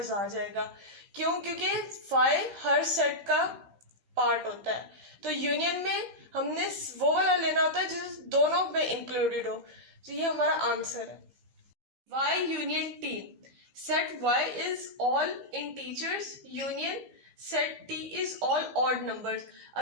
आ जाएगा। क्यों? क्योंकि 5 हर सेट का पार्ट होता है। तो यूनियन में हमने वो वाला लेना होता है जो दोनों में इंक्लूडेड हो। तो ये हमारा आंसर है। y union t। Set y is all integers, union set t is all odd numbers.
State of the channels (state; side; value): late; left; 15 ms